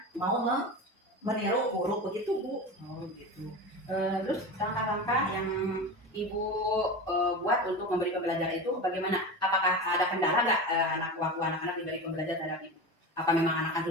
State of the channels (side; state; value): both; normal; correlation 0.26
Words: mau meniru huruf, begitu Bu. Oh gitu. Terus langkah-langkah yang Ibu buat untuk memberi pembelajaran itu bagaimana? Apakah ada kendala nggak waktu anak-anak diberi pembelajaran terhadap Ibu? Apa memang anak